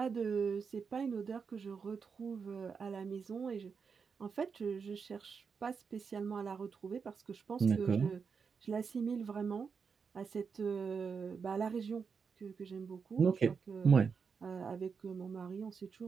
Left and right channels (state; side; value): quieter; left; 5.8 dB